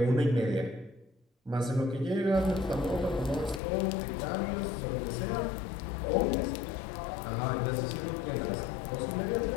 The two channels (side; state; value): right; drops out; at 3.6 s